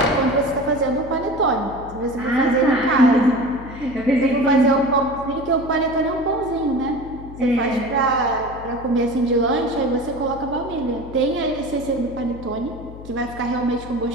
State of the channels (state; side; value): noise; left; hum, 15 dB below the sound